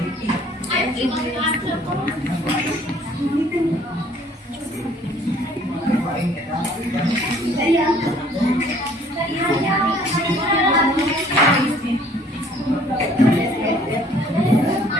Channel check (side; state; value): both; normal; correlation 0.57